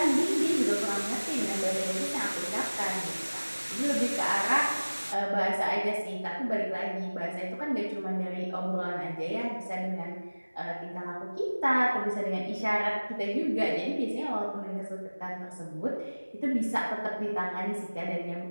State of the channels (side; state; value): both; inverted; correlation -1.00